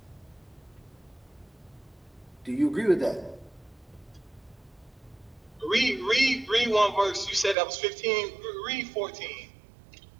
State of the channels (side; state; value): left; drops out; at 7.6 s